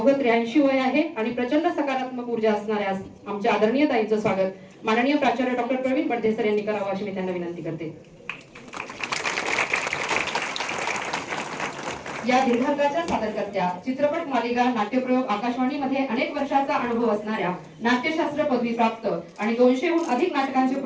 83 वय आहे आणि प्रचंड सकारात्मक ऊर्जा असणाऱ्या आमच्या आदरणीय ताईंचं स्वागत माननीय प्राचार्य डॉक्टर प्रवीण बडदे सर यांनी करावं अशी मी त्यांना विनंती करते. या दीर्घांकाच्या सादरकर्त्या, चित्रपट मालिका नाट्यप्रयोग आकाशवाणीमध्ये अनेक वर्षाचा अनुभव असणाऱ्या, नाट्यशास्त्र पदवी प्राप्त आणि 200हून अधिक नाटकांचे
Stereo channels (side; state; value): both; identical; correlation 1.00